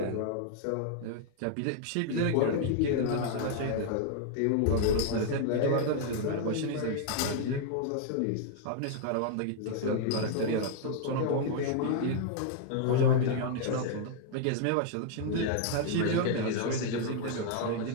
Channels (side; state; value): both; different; correlation -0.01